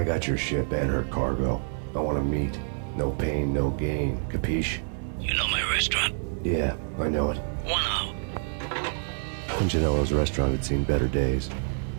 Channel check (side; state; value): left; silent; digital silence